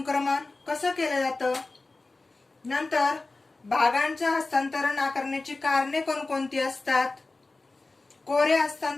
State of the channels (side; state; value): right; quieter; 3.4 dB